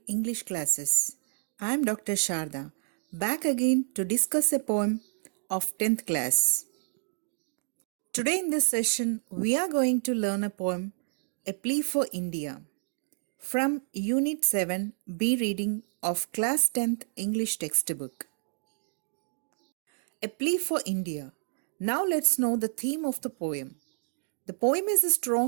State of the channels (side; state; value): left; silent; digital silence